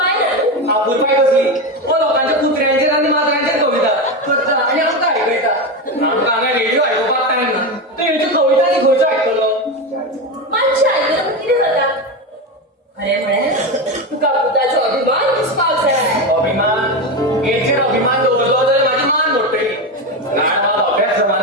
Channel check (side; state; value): both; normal; correlation 0.16